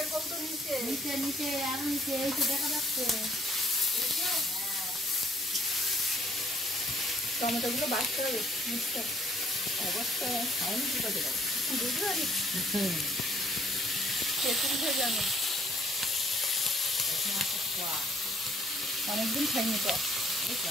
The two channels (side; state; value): both; normal; correlation 0.63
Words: কৌটো নিচে। নিচে নিচে আর নিচে এই তো দেখা যাচ্ছে। টমেটো গুলো বাঁচতে হবে, মিক্সটা অবস্থা খাইনি কি করে দেবো? বুঝতে পারি খেতে উঠে জানো, অনেকদিন খাইনি তো।